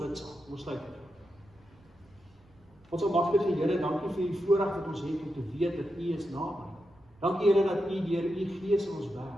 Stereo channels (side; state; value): right; noise; rumble, 29 dB below the sound